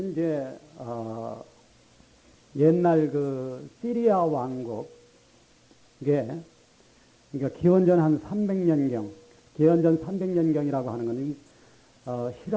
이제 옛날 그 시리아 왕국, 이게 그러니까 기원전 한 300년경, 기원전 300년경이라고 하는 건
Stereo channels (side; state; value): both; identical; correlation 1.00